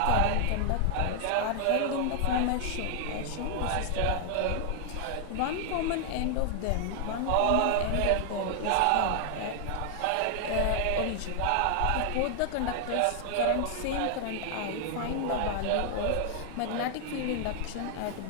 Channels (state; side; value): different; both; correlation 0.00